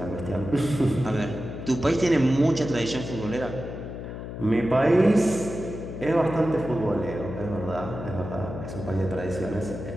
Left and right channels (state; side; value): noise; left; hum, 8 dB below the sound